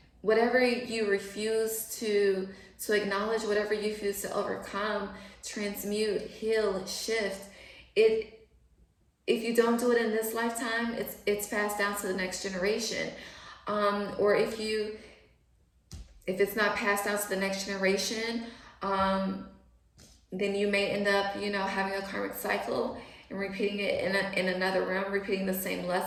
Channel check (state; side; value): identical; both; correlation 1.00